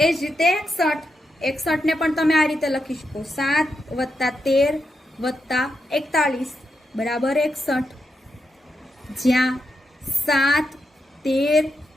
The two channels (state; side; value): normal; both; correlation 0.85